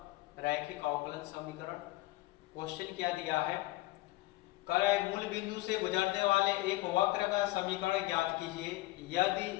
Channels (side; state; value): right; quieter; 18.9 dB